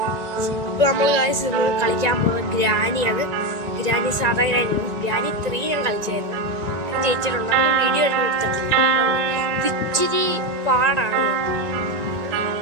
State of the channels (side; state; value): left; late; 1.9 ms